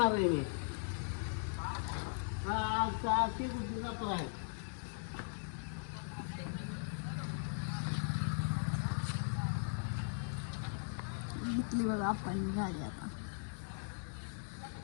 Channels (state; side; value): silent; right; digital silence